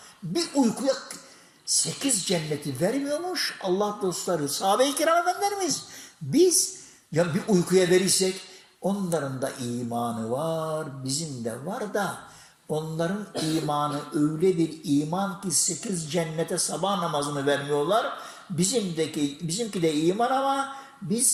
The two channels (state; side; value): identical; both; correlation 1.00